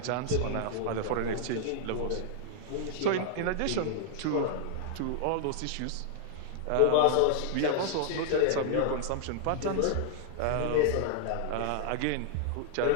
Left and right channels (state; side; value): different; both; correlation -0.01